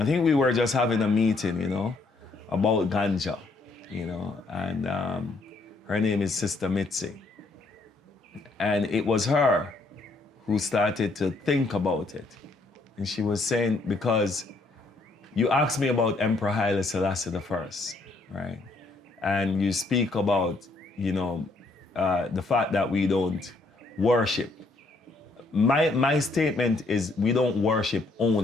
think we were just having a meeting, you know, about ganja, you know, and her name is Sister Mitzi. And it was her who started to think about it. And she was saying, because you asked me about Emperor Haile Selassie I, right? And you speak about, you know, the fact that we don't worship. My statement is we don't worship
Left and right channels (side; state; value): right; quieter; 3.4 dB